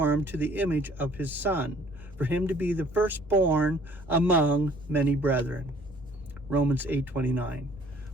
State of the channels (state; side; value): normal; both; correlation 0.56